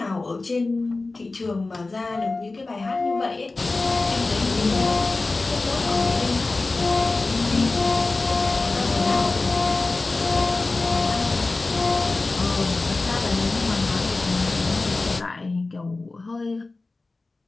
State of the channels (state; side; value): quieter; right; 3.4 dB